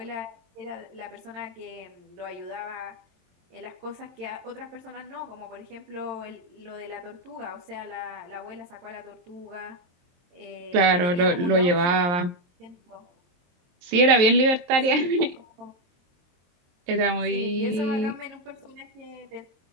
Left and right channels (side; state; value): left; late; 23 ms